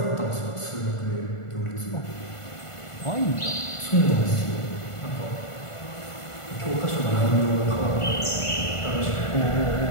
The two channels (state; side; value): late; right; 1.5 ms